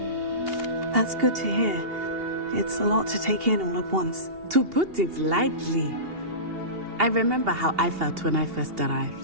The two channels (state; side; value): late; left; 2.8 ms